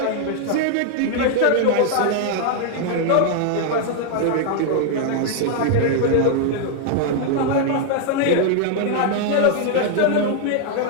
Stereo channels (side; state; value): both; different; correlation 0.00